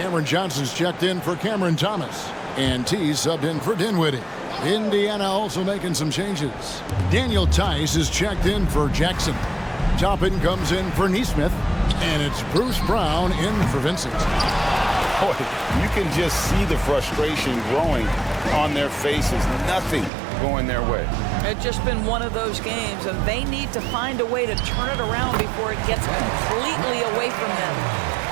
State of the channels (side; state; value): left; drops out; at 20.1 s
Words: Johnson's checked in for Cameron Thomas. And T subbed in for Dinwiddie. Indiana also making some changes. Daniel Tice is checked in for Jackson. Toppin comes in for Neesmith. And it's Bruce Brown in for Vincent. Boy, you can just see the frustration growing on their faces. Nothing going their way. It's just been one of those games, and they need to find a way to turn it around before it gets completely away from them.